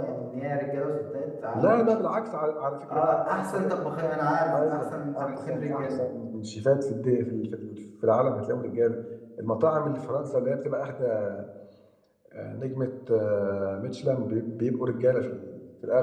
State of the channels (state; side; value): identical; both; correlation 1.00